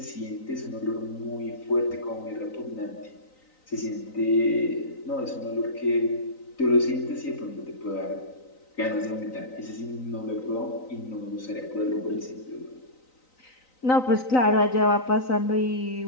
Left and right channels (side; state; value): right; late; 3.9 ms